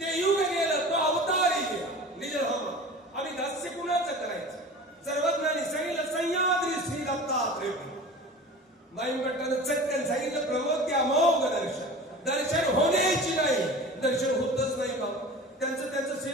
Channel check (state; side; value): normal; both; correlation 0.37